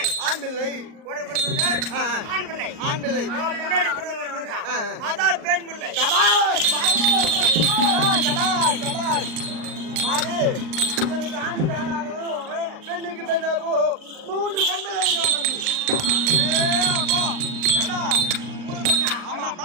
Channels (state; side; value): late; left; 39 ms